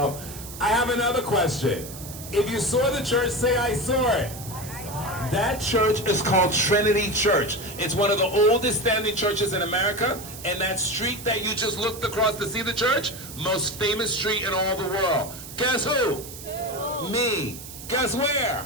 I have another question. If you saw the church, say, I saw it. That church is called Trinity Church. It's one of the oldest standing churches in America. And that street that you just looked across to see the church, most famous street in all the world. Guess who? Me. Guess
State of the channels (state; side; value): noise; right; hiss, 13 dB below the sound